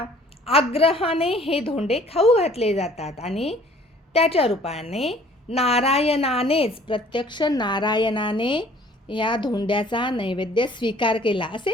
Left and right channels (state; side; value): normal; both; correlation 0.55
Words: आग्रहाने हे धोंडे खाऊ घातले जातात आणि त्याच्या रूपाने नारायणानेच, प्रत्यक्ष नारायणाने या धोंड्याचा नैवेद्य स्वीकार केला